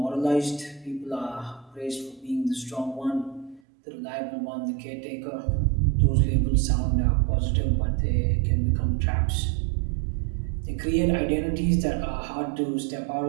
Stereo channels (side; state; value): left; drops out; at 3.6 s